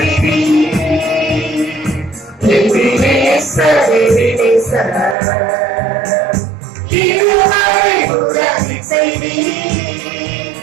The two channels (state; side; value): drops out; left; at 5.2 s